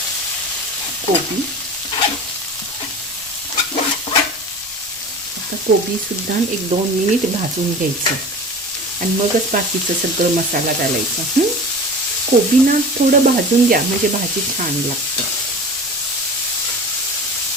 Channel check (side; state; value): left; noise; rumble, 27 dB below the sound